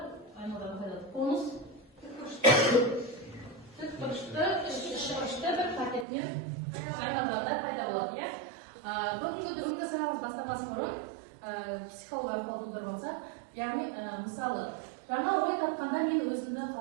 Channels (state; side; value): drops out; left; at 6.1 s